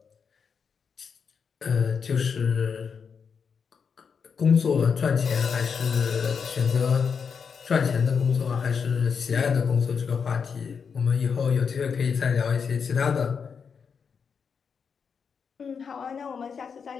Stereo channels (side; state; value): right; quieter; 6.2 dB